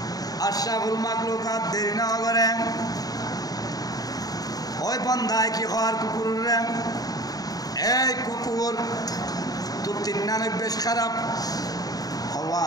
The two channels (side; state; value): right; late; 0.18 ms